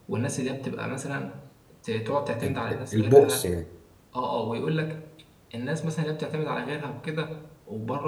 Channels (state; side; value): identical; both; correlation 1.00